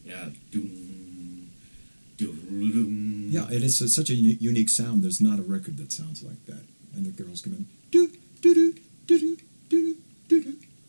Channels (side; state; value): both; inverted; correlation -1.00